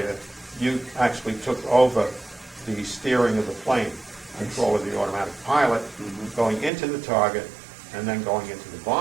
you actually took over the steering of the plane, control of the automatic pilot, going into the target, and then going into the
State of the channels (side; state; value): left; drops out; at 6.7 s